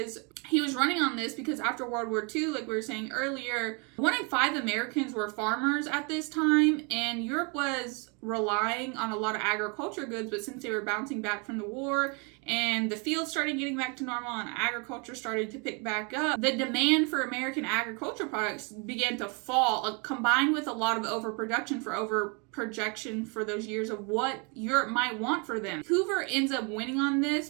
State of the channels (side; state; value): left; quieter; 33.3 dB